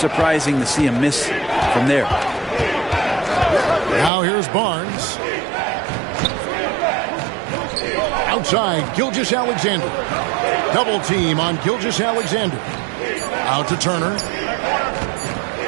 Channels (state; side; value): drops out; left; at 4.1 s